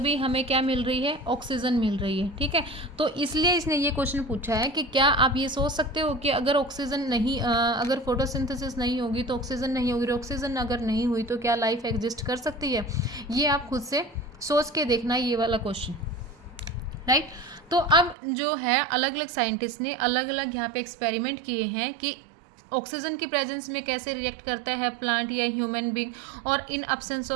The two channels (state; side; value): drops out; left; at 18.2 s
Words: हमें क्या मिल रही है, ऑक्सीजन मिल रही है। ठीक है, तो इसलिए इसने ये क्वेश्चन पूछा है कि क्या आप ये सोच सकते हो कि अगर ऑक्सीजन नहीं अगर फोटोसिंथेसिस नहीं होगी तो ऑक्सीजन नहीं होगी, ऑक्सीजन अगर नहीं हुई तो क्या लाइफ एग्जिस्ट कर सकती है। ये आप खुद से सोच के देखना ये वाला क्वेश्चन, राइट। तो अब जो है अलग अलग साइंटिस्ट ने अलग अलग यहाँ पे एक्सपेरिमेंट किए हैं कि ऑक्सीजन की प्रेजेंस में कैसे रिएक्ट करता है प्लांट या ह्यूमन बीइंग, और इन एब्सेंस